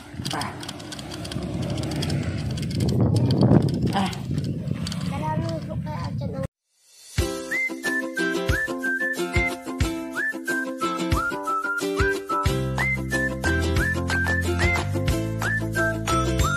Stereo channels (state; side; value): identical; both; correlation 1.00